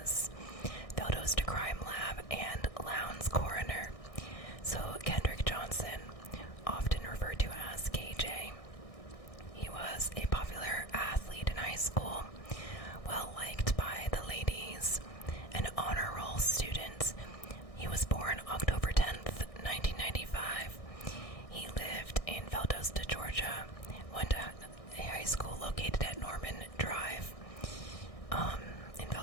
Valdosta Crime Lab, and Lowndes Coroner. So Kendrick Johnson, often referred to as KJ, he was a popular athlete in high school, well liked by the ladies, an honor roll student. He was born October 10th, 1995. He lived in Valdosta, Georgia, went to a high school located at Norman Drive in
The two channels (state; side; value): late; right; 1.6 ms